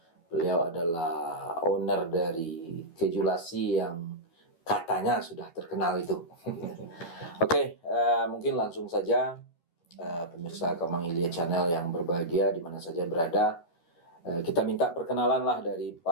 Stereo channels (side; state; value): right; late; 12 ms